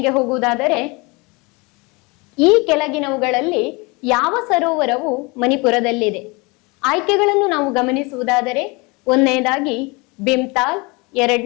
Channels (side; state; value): right; quieter; 27.2 dB